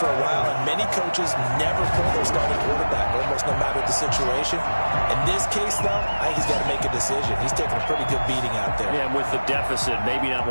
a while, and many coaches never pull their starting quarterback, almost no matter the situation. In this case, though, I think he's got to make a decision. He's taking a pretty good beating out there. Yeah, and with the deficit, maybe not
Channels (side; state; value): both; inverted; correlation -1.00